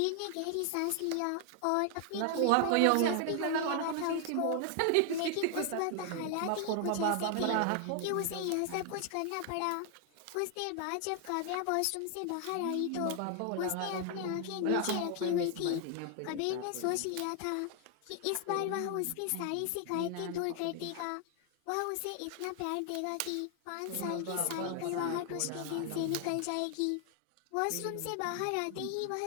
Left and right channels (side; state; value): both; different; correlation 0.00